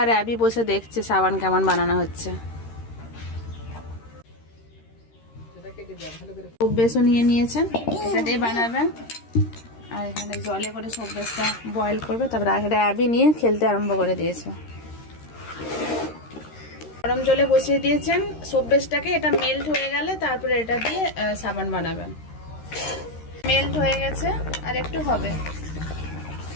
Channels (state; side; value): late; right; 13 ms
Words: আর অ্যাবি বসে দেখছে সাবান কেমন বানানো হচ্ছে। সোপ বেসও নিয়ে নিয়েছেন, এটা দিয়ে বানাবেন। আর এখানে জলে করে সোপ বেসটা বয়েল করবে, তারপরে এটা অ্যাবি নিয়ে খেলতে আরম্ভ করে দিয়েছে। গরম জলে বসিয়ে দিয়েছেন সোপ বেসটাকে, এটা মেল্ট হয়ে গেলে তারপরে এটা দিয়ে সাবান বানাবেন। মেল্ট হয়ে গেছে আর একটু হবে।